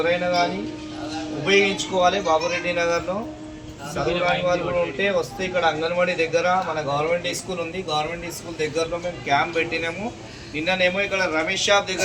కానీ ఉపయోగించుకోవాలి. బాబురెడ్డి నగర్లో చదువు రాని వాళ్ళు కూడా ఉంటే వస్తే ఇక్కడ అంగన్వాడీ దగ్గర మన గవర్నమెంట్ స్కూల్ ఉంది. గవర్నమెంట్ స్కూల్ దగ్గరలో మేము క్యాంప్ పెట్టినాము. నిన్ననేమో ఇక్కడ రమేష్ షాప్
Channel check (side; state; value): both; identical; correlation 1.00